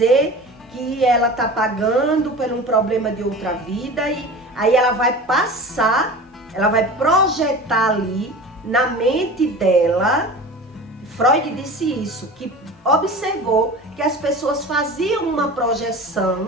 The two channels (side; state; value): both; normal; correlation 0.35